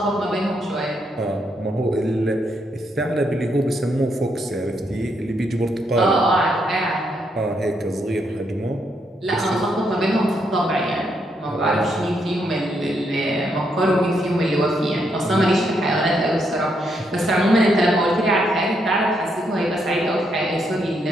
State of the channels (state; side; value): normal; both; correlation 0.77